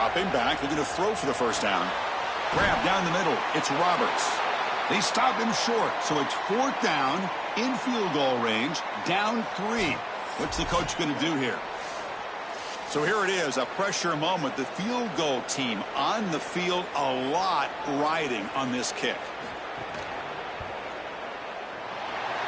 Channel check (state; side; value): identical; both; correlation 1.00